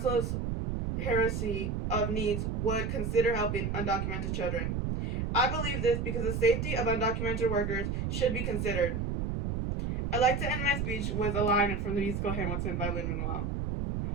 hierarchy of needs would consider helping undocumented children. I believe this because the safety of undocumented workers should be considered. I'd like to end my speech with a line from the musical Hamilton by Lin-Manuel.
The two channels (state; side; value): noise; right; rumble, 1 dB below the sound